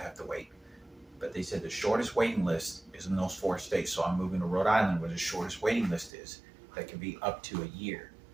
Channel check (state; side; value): drops out; left; at 6.1 s